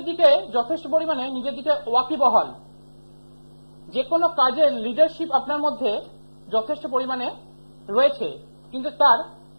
দিকে যথেষ্ট পরিমাণে নিজের দিকে ওয়াকিবহাল, যে কোনো কাজের লিডারশিপ আপনার মধ্যে যথেষ্ট পরিমাণে রয়েছে, কিন্তু তার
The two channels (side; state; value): both; inverted; correlation -1.00